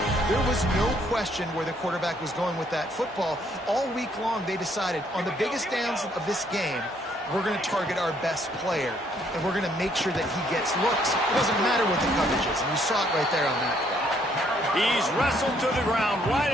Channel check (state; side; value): normal; both; correlation 0.68